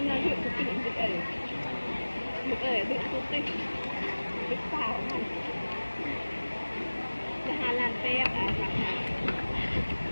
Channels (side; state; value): both; inverted; correlation -1.00